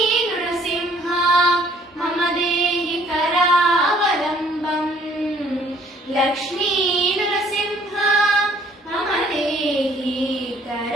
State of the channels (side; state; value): both; normal; correlation 0.60